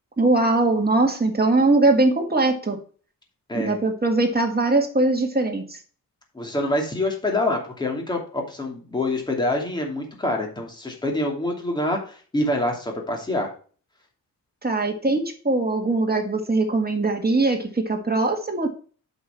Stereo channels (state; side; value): normal; both; correlation 0.39